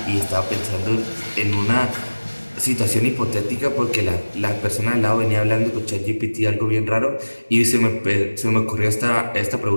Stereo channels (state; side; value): inverted; both; correlation -1.00